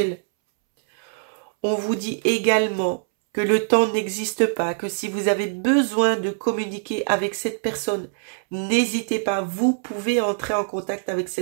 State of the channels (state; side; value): silent; left; 63 dB below the other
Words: On vous dit également que le temps n'existe pas, que si vous avez besoin de communiquer avec cette personne, n'hésitez pas, vous pouvez entrer en contact avec